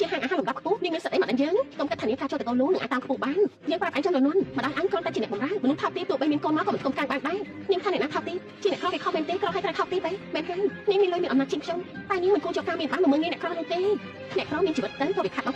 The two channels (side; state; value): both; identical; correlation 1.00